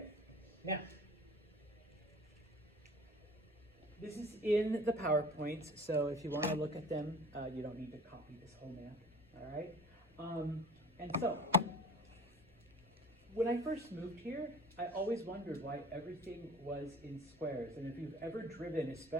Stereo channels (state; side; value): normal; both; correlation 0.45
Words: Now, this is in the PowerPoints, so if you want to look at them, you don't need to copy this whole map, all right? And so, when I first moved here, I always wondered why everything was in squares. And if you've ever driven,